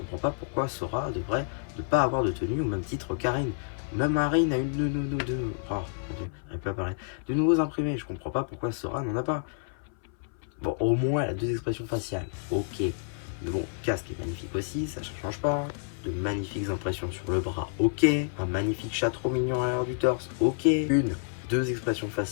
pas pourquoi Sora devrait ne pas avoir de tenue au même titre Karine. Même Marine a une de nouveaux imprimés. Je comprends pas pourquoi Sora n'en a pas. Bon, au moins elle a deux expressions faciales. Ok. Mais bon, casque est magnifique aussi, ça ne change pas. De magnifiques impressions sur le bras, ok. Un magnifique chat trop mignon à l'arrière du torse, ok. Deux expressions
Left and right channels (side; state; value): right; silent; 59 dB below the other